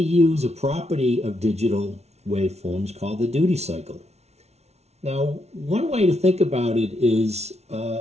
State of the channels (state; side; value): late; left; 0.31 ms